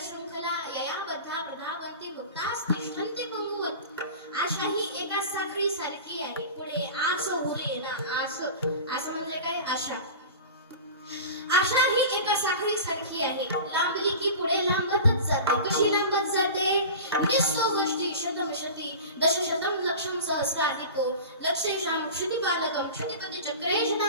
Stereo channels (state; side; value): inverted; both; correlation -0.34